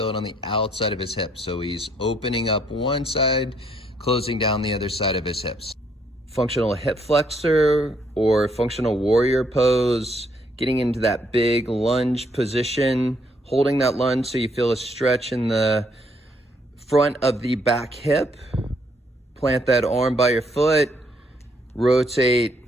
it on the outside of his hip. So he's opening up one side, closing down the other side of his hips. Functional hip flexor or functional warrior pose, getting into that big lunge position, holding that lunge so you feel a stretch in the front of the back hip. Plant that arm by your foot, rotate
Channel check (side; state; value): both; normal; correlation 0.70